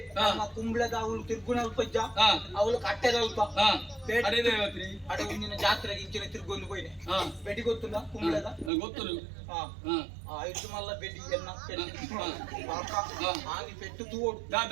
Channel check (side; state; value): left; drops out; at 8.7 s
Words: ಕುಂಬ್ಳದ ಅವಳು ತಿರ್ಗುಣ ಅಲ್ಪ ಅವಳು ಕಟ್ಟೆದ ಅಲ್ಪ ಅಡೆ ಮುಂದಿನ ಜಾತ್ರೆಗೆ ಇಂಚಿನ ತಿರ್ಗೊಂಡು ಹೋಯ್ನೆ ಬೆಡಿ ಗೊತ್ತುಂಡ ಕುಂಬ್ಳದ ಗೊತ್ತು ಐದು ಮಲ್ಲ ಬೆಡಿ ಎನ್ನ ಆಗಿ ಪೆಟ್ಟು ತೂಡು